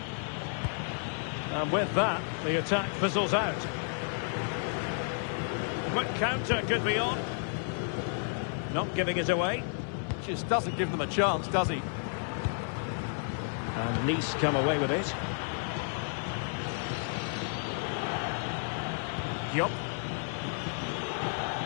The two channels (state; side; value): silent; right; 56 dB below the other